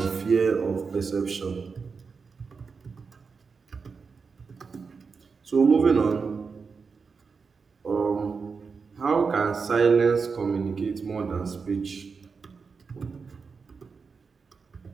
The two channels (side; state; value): left; quieter; 5.1 dB